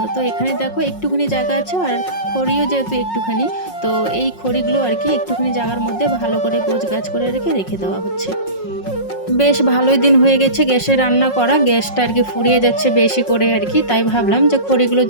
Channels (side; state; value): right; late; 5.5 ms